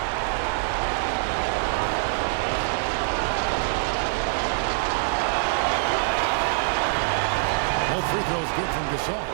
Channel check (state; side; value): silent; left; digital silence